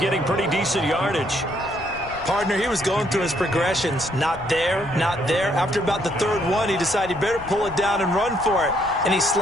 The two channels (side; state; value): left; noise; rumble, 17 dB below the sound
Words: pretty decent yardage. Partner, he was going through his progressions. Not there, not there. After about the third one, he decided he better pull it down and run for it. And he